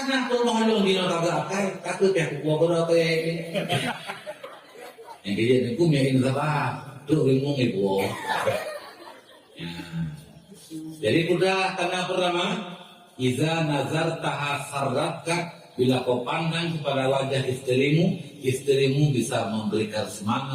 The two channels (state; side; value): identical; both; correlation 1.00